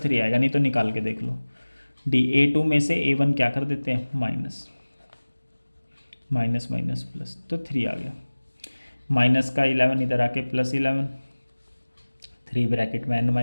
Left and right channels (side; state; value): both; inverted; correlation -1.00